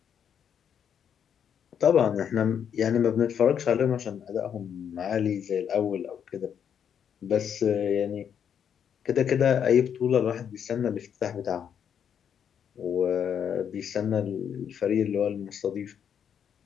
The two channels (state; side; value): quieter; right; 8.3 dB